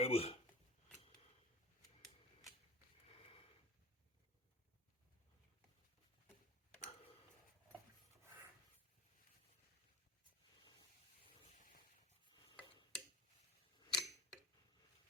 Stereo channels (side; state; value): both; normal; correlation 0.38